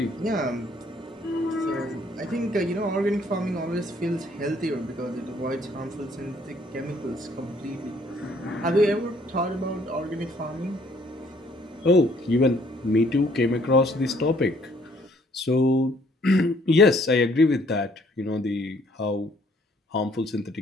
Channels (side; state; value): both; normal; correlation 0.63